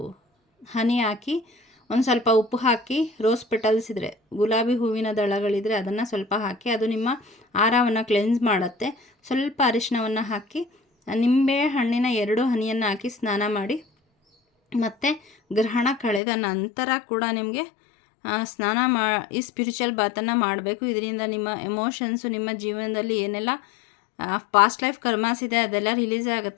ಹನಿ ಹಾಕಿ, ಒಂದು ಸ್ವಲ್ಪ ಉಪ್ಪು ಹಾಕಿ, ರೋಸ್ ಪೆಟಲ್ಸ್ ಇದ್ದರೆ, ಗುಲಾಬಿ ಹೂವಿನ ದಳಗಳಿದ್ರೆ ಅದನ್ನು ಸ್ವಲ್ಪ ಹಾಕಿ, ಅದು ನಿಮ್ಮ ಆಹಾರವನ್ನು ಕ್ಲೆನ್ಸ್ ಮಾಡುತ್ತೆ. ಸ್ವಲ್ಪ ಅರಿಶಿಣವನ್ನು ಹಾಕಿ, ನಿಂಬೆ ಹಣ್ಣಿನ 2 ಹನಿಯನ್ನು ಹಾಕಿ ಸ್ನಾನ ಮಾಡಿ, ಮತ್ತು ಗ್ರಹಣ ಕಳೆದ ನಂತರ ಕೂಡ ನಿಮಗೆ ಈ ಸ್ಪಿರಿಚುವಲ್ ಬಾತನ್ನು ಮಾಡಬೇಕು. ಇದರಿಂದ ನಿಮ್ಮ ಎಮೋಷನ್ಸು, ನಿಮ್ಮ ಜೀವನದಲ್ಲಿ ಏನೆಲ್ಲ ಪಾಸ್ಟ್ ಲೈಫ್ ಕರ್ಮಾಸ್ ಇದೆ ಅದೆಲ್ಲ ರಿಲೀಸ್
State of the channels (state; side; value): drops out; right; at 16.2 s